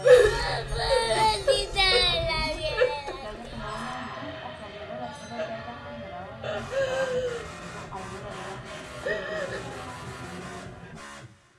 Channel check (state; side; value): identical; both; correlation 1.00